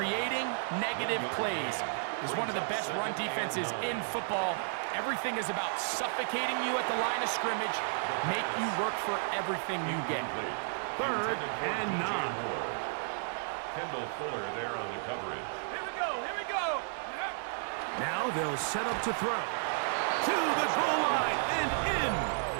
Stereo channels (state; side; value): silent; left; 56 dB below the other